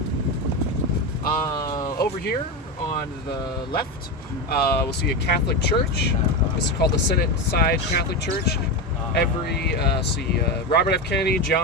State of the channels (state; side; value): normal; both; correlation 0.17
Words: Over here on the left, we'll see a Catholic church. This is called the Senate Side Catholic Church. Robert F. Kennedy,